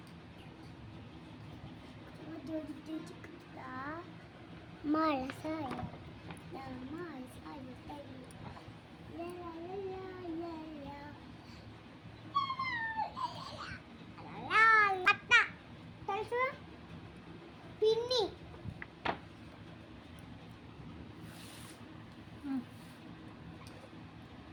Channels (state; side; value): identical; both; correlation 1.00